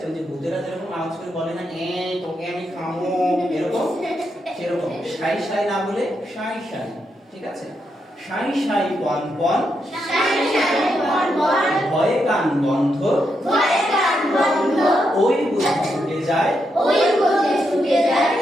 ওই যে ভূতেরা যেরকম আওয়াজ করে বলে না তোকে আমি খামো এরকম সেরকম সাই সাই না বলে সাই সাই ঠিক আছে সাই সাই পন পন ভয়ে কান বন্ধ ওই বুঝে ছুটে যায়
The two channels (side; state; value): both; normal; correlation 0.82